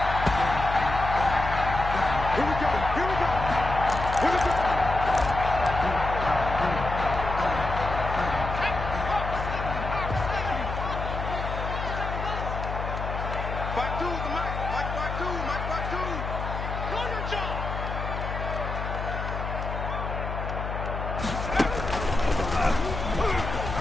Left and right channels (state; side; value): noise; left; hum, 5 dB below the sound